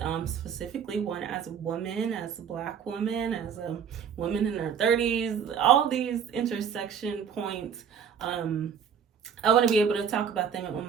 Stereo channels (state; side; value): quieter; left; 7.5 dB